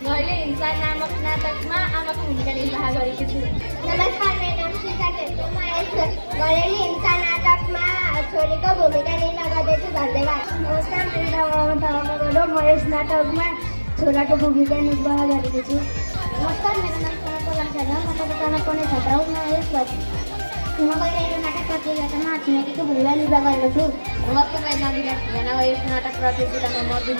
हिंसा नामक नाटकमा आमाको भूमिका निर्वाह गरेकी छु। नमस्कार, मेरो नाम शिखा छेत्री, म यस घरेलु हिंसा नाटकमा छोरीको भूमिका निर्वाह गर्दैछु। धन्यवाद। नमस्कार, मेरो नाम अमन थापा, म यस नाटकमा छोराको भूमिका निर्वाह गरेको छु। नमस्कार, मेरो नाम सनत शर्मा, म कक्षा 7 मा पढ्ने छात्र हुँ। म गइरहेको नाटक प्रतियोगितामा छिमेकीको भूमिका निर्वाह गरेको छु। नमस्ते, मेरो नाम विकास भुजेना, यस नाटक प्रतियोगितामा म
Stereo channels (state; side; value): inverted; both; correlation -1.00